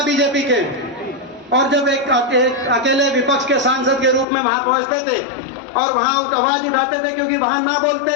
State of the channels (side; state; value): right; drops out; at 4.2 s